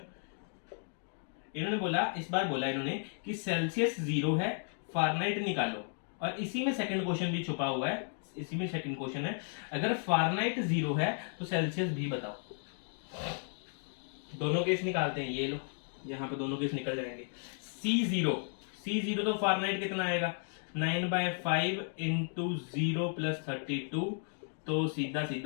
इन्होंने बोला, इस बार बोला इन्होंने कि सेल्सियस 0 है, फारेनहाइट निकालो। और इसी में सेकंड क्वेश्चन भी छुपा हुआ है, इसी में सेकंड क्वेश्चन है, अगर फारेनहाइट 0 है तो सेल्सियस भी बताओ। दोनों केस निकालते हैं, ये लो यहाँ पे दोनों केस निकल जाएंगे। C0 तो फारेनहाइट कितना आएगा 9/5 इंटू 0 प्लस 32, तो सीधा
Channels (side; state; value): right; silent; 55 dB below the other